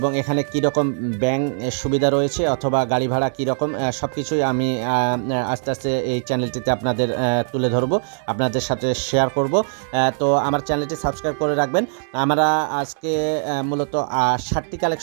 এখানে কীরকম ব্যাংক সুবিধা রয়েছে অথবা গাড়ি ভাড়া কীরকম, সব কিছুই আমি আস্তে আস্তে এই চ্যানেলটিতে আপনাদের তুলে ধরবো, আপনাদের সাথে শেয়ার করব। তো আমার চ্যানেলটি সাবস্ক্রাইব করে রাখবেন। আমরা আজকে মূলত 7টি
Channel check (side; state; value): left; silent; 65 dB below the other